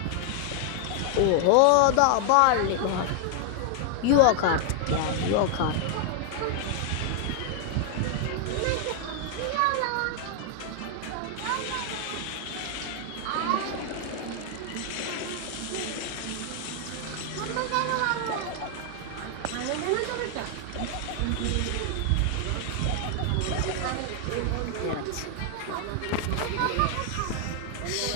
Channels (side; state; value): both; different; correlation 0.00